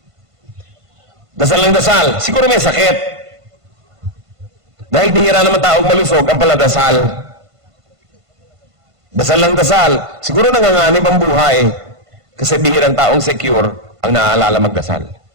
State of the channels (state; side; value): late; left; 1.5 ms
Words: Dasal ng dasal, siguro may sakit. Dahil bihira naman taong malusog ang paladasal. Dasal ng dasal, siguro nanganganib ang buhay. Kasi bihirang taong secure ang naaalala magdasal.